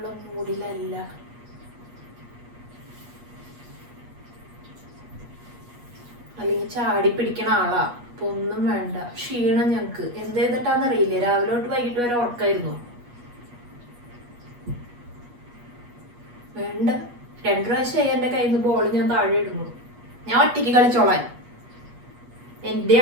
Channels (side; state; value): left; late; 8.3 ms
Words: മൂഡിലല്ല. അല്ലെങ്കിൽ ചാടി പിടിക്കണ ആളാ. അപ്പൊ ഒന്നും വേണ്ട. ക്ഷീണം ഞങ്ങക്ക് എന്ത് ചെയ്തിട്ടാന്നറിയില്ല. രാവിലെ തൊട്ട് വൈകിട്ട് വരെ ഉറക്കായിരുന്നു. വേണ്ട. 2 പ്രാവശ്യമായി എന്റെ കയ്യിൽ നിന്ന് ബോൾ ഞാൻ താഴെ ഇടുന്നു. ഞാൻ ഒറ്റയ്ക്ക് കളിച്ചോളാൻ. എന്റെ